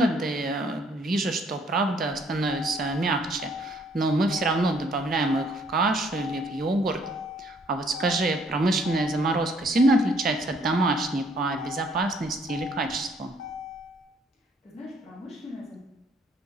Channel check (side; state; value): both; normal; correlation 0.64